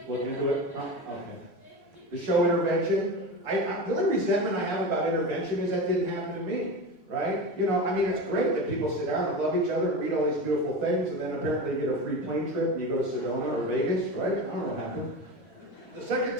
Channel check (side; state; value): both; normal; correlation 0.26